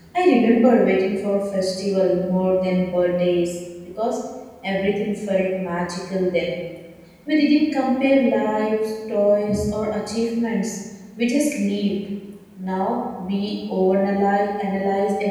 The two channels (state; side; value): identical; both; correlation 1.00